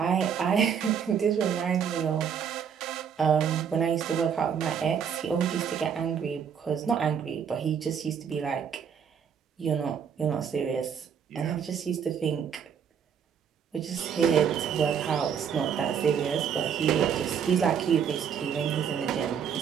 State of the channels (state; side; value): quieter; left; 7.6 dB